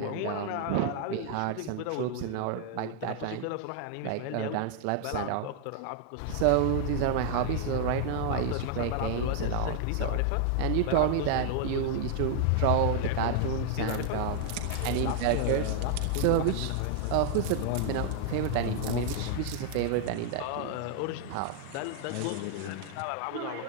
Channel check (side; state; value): both; different; correlation 0.00